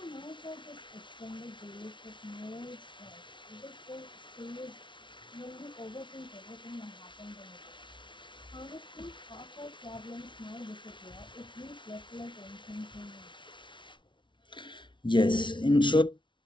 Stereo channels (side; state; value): right; late; 0.24 ms